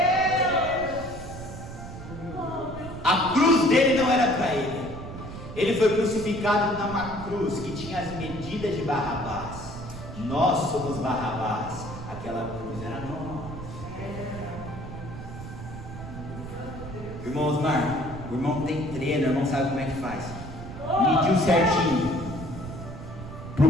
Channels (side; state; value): right; noise; rumble, 11 dB below the sound